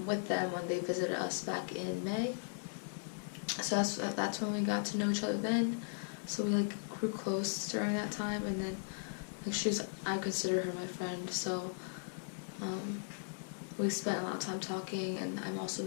with them when they visited us back in May. So that's when we got to know each other then. So we like grew close during that time, and then like I consider her my friend. So we spent a lot of time talking, and I've also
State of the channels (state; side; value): silent; right; 53 dB below the other